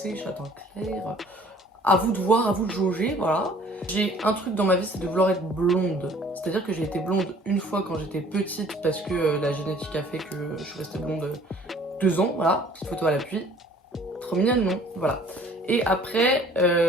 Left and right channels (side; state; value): both; normal; correlation 0.54